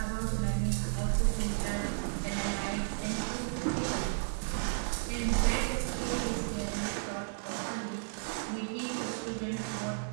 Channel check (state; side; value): silent; left; digital silence